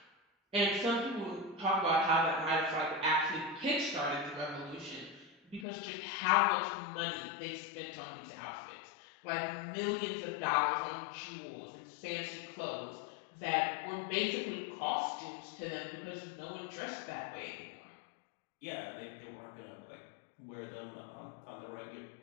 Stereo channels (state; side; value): drops out; right; at 5.7 s